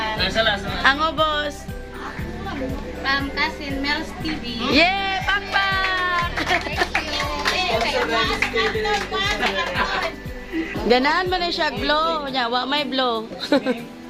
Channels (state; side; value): identical; both; correlation 1.00